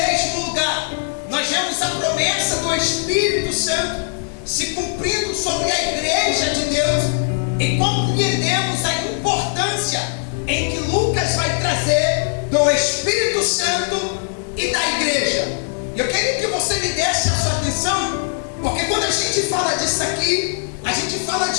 lugar. Nós vemos a promessa do Espírito Santo se cumprindo sobre a igreja de Deus, e compreendemos a importância em que Lucas vai trazer do Espírito Santo e da igreja. Eu queria que você me desse a sua atenção, porque quando a gente fala disso aqui, a gente fala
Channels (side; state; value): right; silent; digital silence